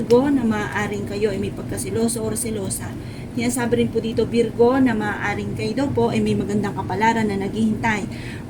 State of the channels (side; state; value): both; identical; correlation 1.00